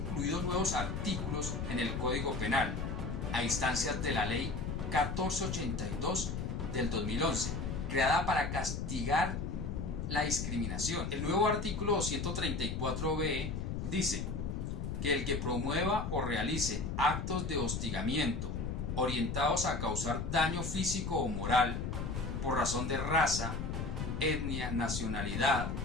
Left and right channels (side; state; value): left; noise; rumble, 3 dB below the sound